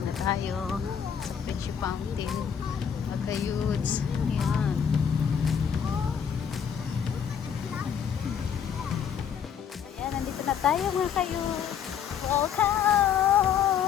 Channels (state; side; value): quieter; right; 8.0 dB